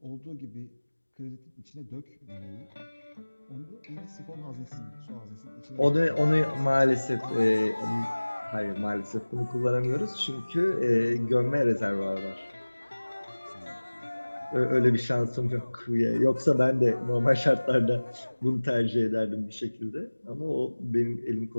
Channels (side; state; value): both; inverted; correlation -1.00